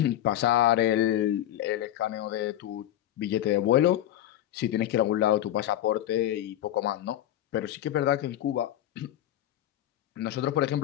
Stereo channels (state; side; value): quieter; right; 12.6 dB